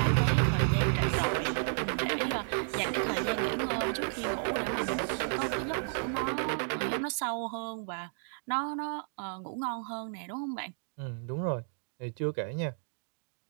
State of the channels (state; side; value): silent; left; 56 dB below the other